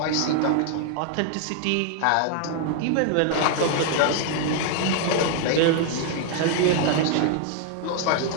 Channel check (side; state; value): both; different; correlation 0.00